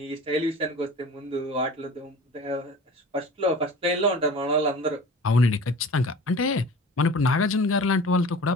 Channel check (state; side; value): normal; both; correlation 0.39